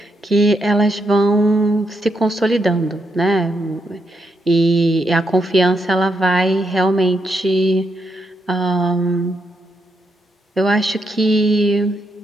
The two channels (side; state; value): both; normal; correlation 0.80